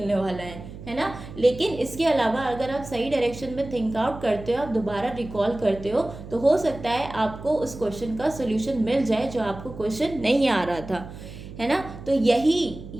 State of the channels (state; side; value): noise; right; hum, 13 dB below the sound